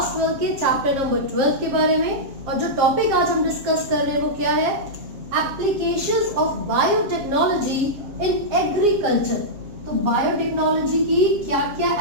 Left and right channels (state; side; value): late; left; 7.5 ms